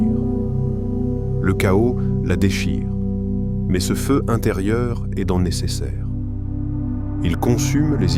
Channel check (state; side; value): identical; both; correlation 1.00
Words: Le chaos la déchire, mais ce feu intérieur est dans le nécessaire. Il consume les